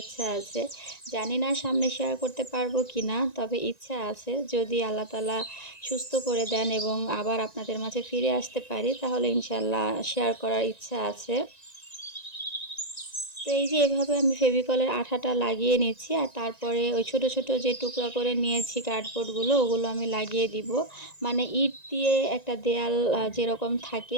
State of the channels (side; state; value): right; late; 1.9 ms